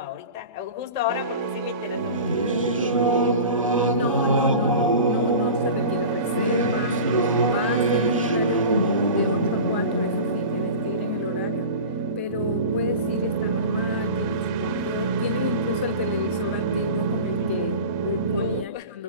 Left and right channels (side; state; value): both; inverted; correlation -0.34